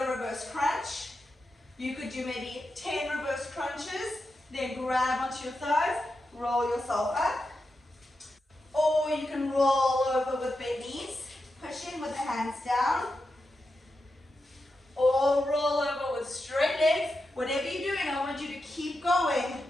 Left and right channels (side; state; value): both; normal; correlation 0.88